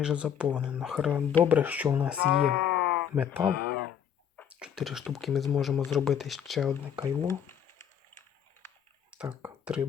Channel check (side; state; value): right; quieter; 8.6 dB